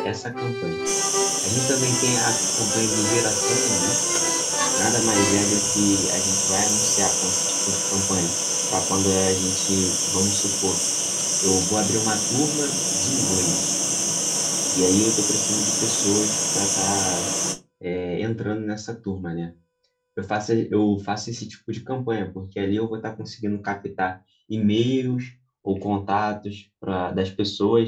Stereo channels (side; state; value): both; identical; correlation 1.00